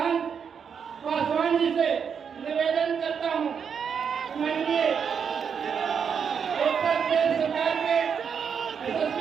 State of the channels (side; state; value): left; quieter; 6.9 dB